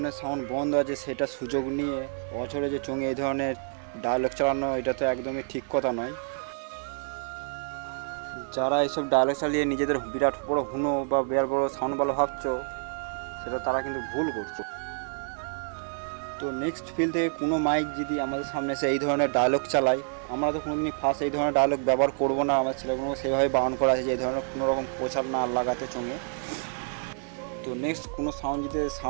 সাউন্ড বন্ধ আছে, সেটা সুযোগ নিয়ে বছরে যে চোঙে এই ধরনের ডায়লগ চালানো, এটা তো একদমই ঠিক কথা নয়। যারা এইসব ডায়লগ চালিয়ে নিজেদের বিরাট বড় হুনো বা বিরাট বড় সাউন্ড ভালো ভাবছো, সেটা তারা কিন্তু ভুল করছো। তো নেক্সট ফিল থেকে কোনো মাইক যদি আমাদের সামনে এসে এই ধরনের ডায়লগ চালায়, আমরা তো কোনোদিনই ফার্স্ট এই ধরনের ডায়লগ ব্যবহার করবো না। আমার ছেলেগুলোকে সেইভাবে বারণ করা আছে যে এই ধরনের কোনো রকম প্রচার না লাগাতে চোঙে। তো নেক্সট কোনো সাউন্ড যদি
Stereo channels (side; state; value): left; silent; 59 dB below the other